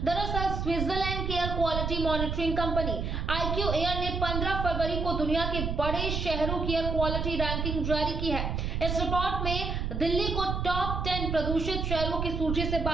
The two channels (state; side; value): noise; right; rumble, 2 dB below the sound